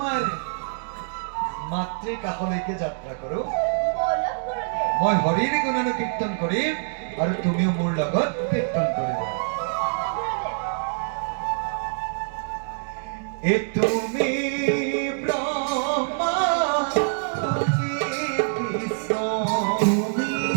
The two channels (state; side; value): silent; left; digital silence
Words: মাতৃৰ কাষলৈকে যাত্ৰা কৰো বলক গুৰুদেৱ মই হৰিৰ গুণানুকীৰ্তন কৰিম আৰু তুমিও মোৰ লগত কীৰ্তন কৰিবা গুৰুদেৱ এ তুমি